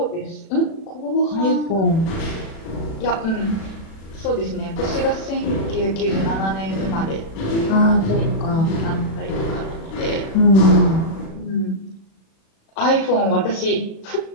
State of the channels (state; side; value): late; right; 36 ms